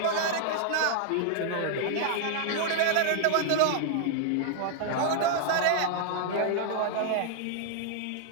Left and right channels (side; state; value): both; different; correlation -0.01